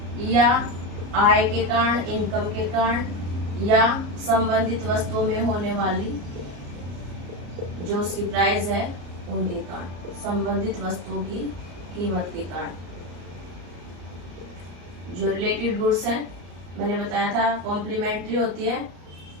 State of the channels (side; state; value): left; late; 34 ms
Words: या आय के कारण, इनकम के कारण, या संबंधित वस्तुओं में होने वाली जो उसकी प्राइस है उनके कारण, संबंधित वस्तुओं की कीमत के कारण। जो रिलेटेड गुड्स है मैंने बताया था कॉम्प्लीमेंट्री होती है